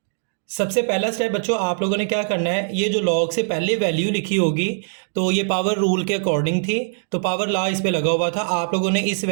सबसे पहला स्टेप बच्चों, आप लोगों ने क्या करना है, ये जो लॉग से पहले वैल्यू लिखी होगी तो ये पावर रूल के अकॉर्डिंग थी, तो पावर लॉ इस पे लगा हुआ था। आप लोगों ने इस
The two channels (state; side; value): silent; left; digital silence